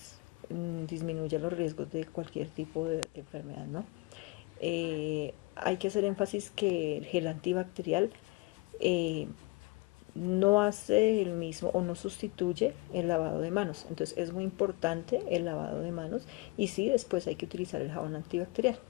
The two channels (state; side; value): quieter; right; 23.8 dB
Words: disminuya los riesgos de cualquier tipo de enfermedad, ¿no? Hay que hacer énfasis que el gel antibacterial no hace el mismo o no sustituye el lavado de manos. Entonces es muy importante el lavado de manos y sí, después hay que utilizar el jabón antibacterial.